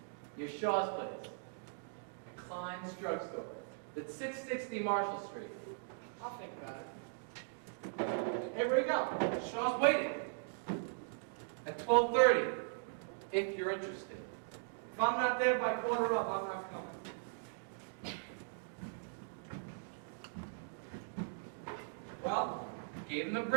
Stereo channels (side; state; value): left; silent; digital silence